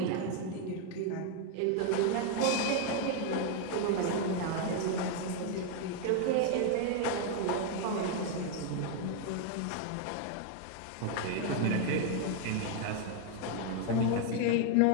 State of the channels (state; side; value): different; both; correlation 0.01